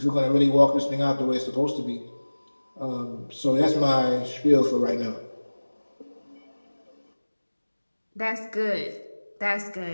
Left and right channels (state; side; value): inverted; both; correlation -1.00